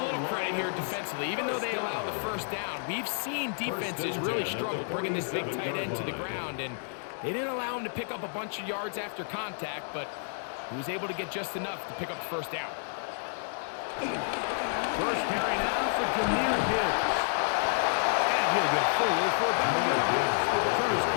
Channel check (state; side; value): silent; right; digital silence